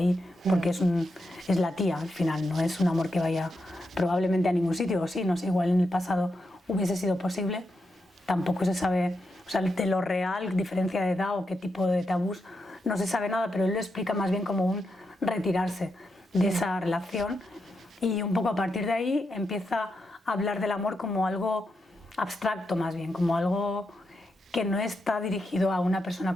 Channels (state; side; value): normal; both; correlation 0.85